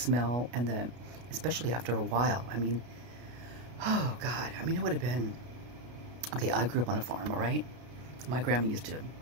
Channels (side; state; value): left; late; 33 ms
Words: and especially after a while. I mean, oh God. I mean, it would have been... Okay, I grew up on a farm, all right? My grandma used to